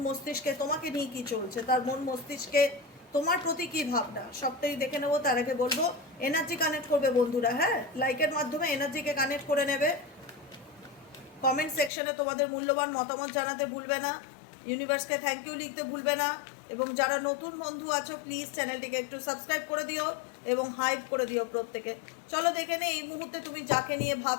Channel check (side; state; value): right; drops out; at 11.9 s